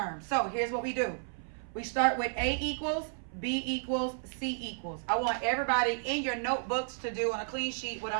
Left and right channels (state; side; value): silent; left; 56 dB below the other